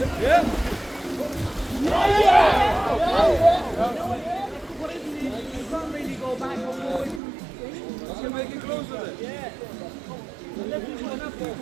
Yeah. You can't really go back or forward. You can make it closer then. Yeah. The left is going up there.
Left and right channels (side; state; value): left; drops out; at 7.2 s